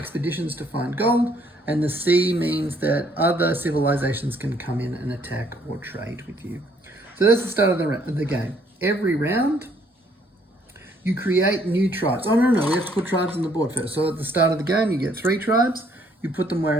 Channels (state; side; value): normal; both; correlation 0.66